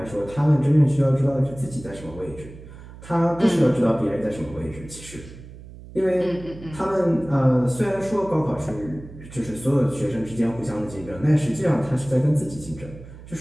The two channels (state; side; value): noise; right; hum, 17 dB below the sound